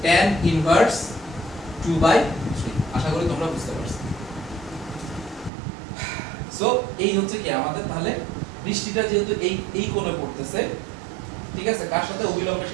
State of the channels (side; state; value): left; drops out; at 5.5 s